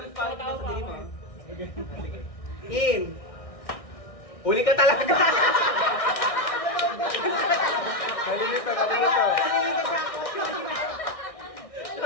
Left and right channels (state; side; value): late; right; 1.6 ms